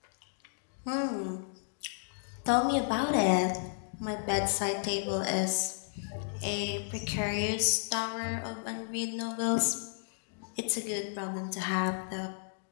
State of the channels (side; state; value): right; silent; digital silence